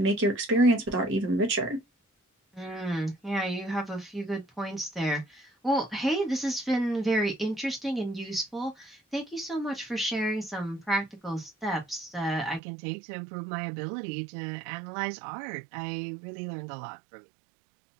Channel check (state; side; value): drops out; left; at 12.6 s